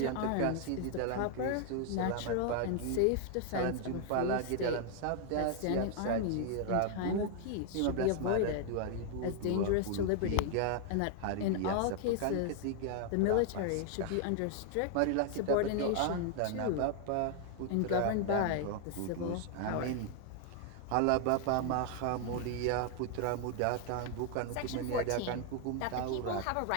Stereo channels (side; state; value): both; different; correlation 0.00